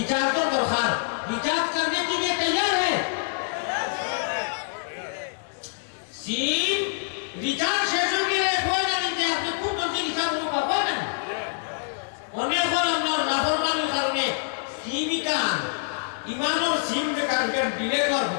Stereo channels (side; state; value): right; silent; 61 dB below the other